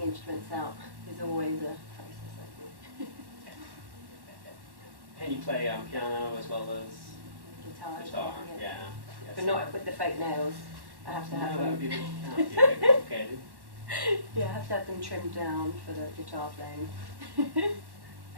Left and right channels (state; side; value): late; left; 1.1 ms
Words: instruments out is always a process I do. And you play piano as well as Guitar, yeah. Yes. But not with the fake nails. I have to have that them. would be a bit complicated. Yeah, I have to have them trimmed down for the guitar playing.